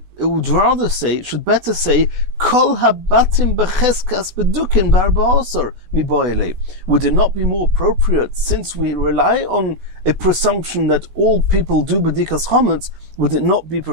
would rather say, it should better say, Kol habatim becheskas bedukin barba'asar miboyle. Would it not be more appropriate, since we rely on a presumption that all people do bedikas chometz, would it not be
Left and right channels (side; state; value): left; late; 16 ms